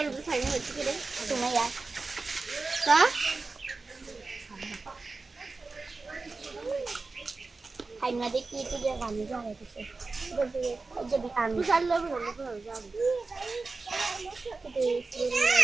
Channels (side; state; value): left; quieter; 3.8 dB